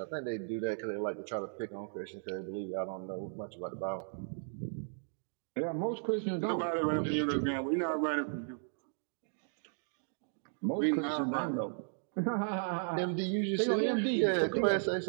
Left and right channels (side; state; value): left; silent; digital silence